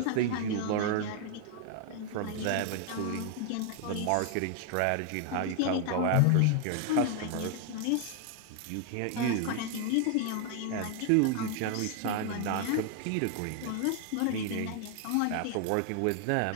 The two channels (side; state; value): both; different; correlation 0.00